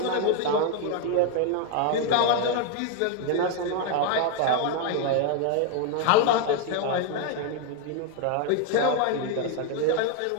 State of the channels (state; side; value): different; both; correlation 0.00